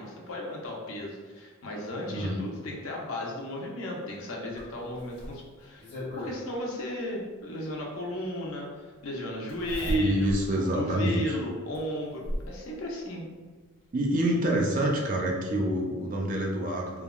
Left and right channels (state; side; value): normal; both; correlation 0.53